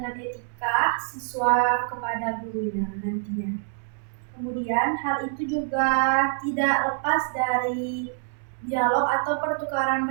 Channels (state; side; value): silent; left; 61 dB below the other